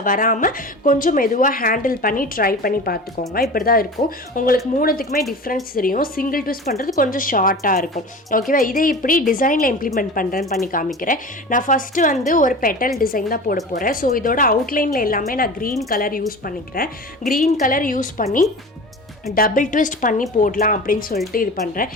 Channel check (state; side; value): normal; both; correlation 0.34